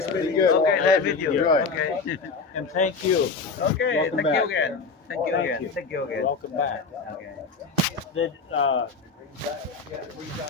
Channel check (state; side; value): quieter; right; 4.6 dB